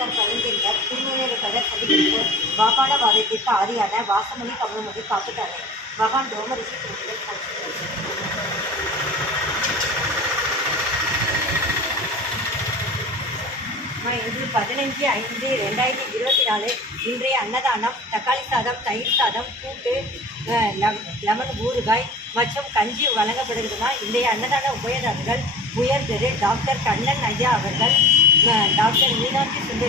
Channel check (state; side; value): normal; both; correlation 0.39